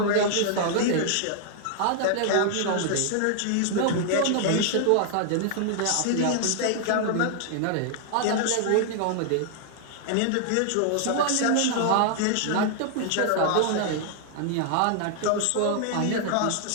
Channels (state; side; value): different; both; correlation 0.00